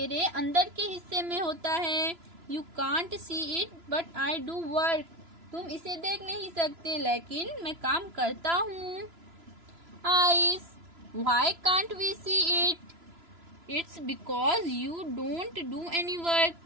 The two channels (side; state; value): left; late; 3.0 ms